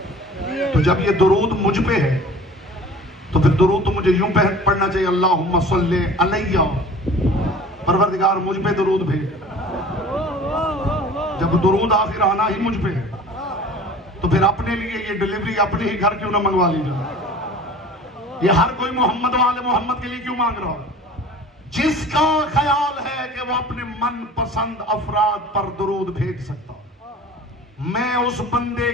तो जब ये दुरूद मुझ पे है तो फिर दुरूद तो मुझे यूं पढ़ना चाहिए, अल्लाहुम्मा सल्ले अलैया, परवरदिगार मुझ पे दुरूद भेज। जब दुरूद आखिर आना ही मुझ पे है तो फिर अपने लिए ये डिलीवरी अपने ही घर क्यों ना मंगवा ली जाए। ये हर कोई मोहम्मद वाले मोहम्मद के लिए क्यों मांग रहा है? जिसका ख्याल है कि वो अपने मन पसंद अफराद पर दुरूद भेज सकता, मैं उस बंदे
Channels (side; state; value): both; normal; correlation 0.43